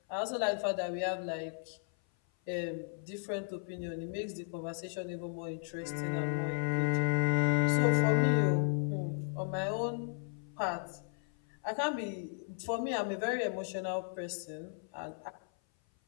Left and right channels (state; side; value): silent; right; 54 dB below the other